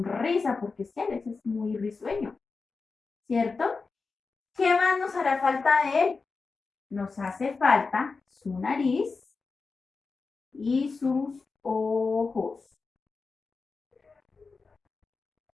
porque es que Alex es muy risueño, ¿cierto? ¿Qué más nos hará falta de él? Nos hace falta su nariz y sus ojos.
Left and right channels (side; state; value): right; quieter; 4.4 dB